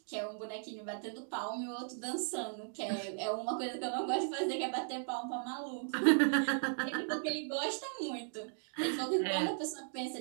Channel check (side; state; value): left; silent; digital silence